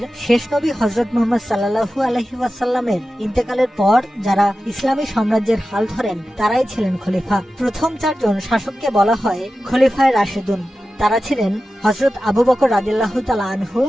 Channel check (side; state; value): both; normal; correlation 0.94